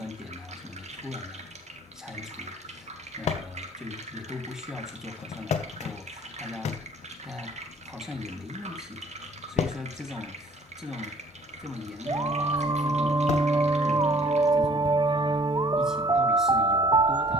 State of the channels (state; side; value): normal; both; correlation 0.55